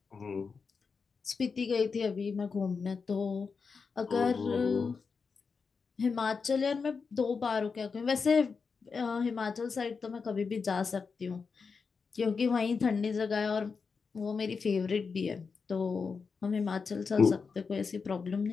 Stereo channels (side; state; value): right; quieter; 5.2 dB